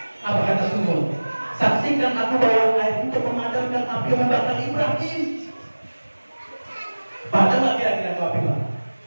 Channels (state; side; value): inverted; both; correlation -1.00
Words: Apa kata semut? Saksikan aku bawa air untuk memadamkan api yang membakar Ibrahim. Padahal nggak kira-kira itu api Pak?